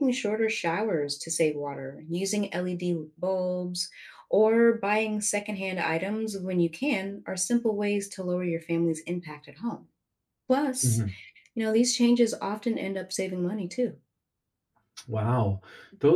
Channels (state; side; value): identical; both; correlation 1.00